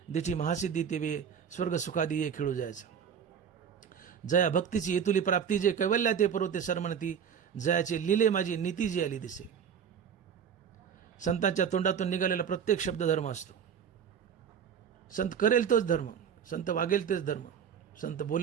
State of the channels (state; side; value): quieter; left; 7.7 dB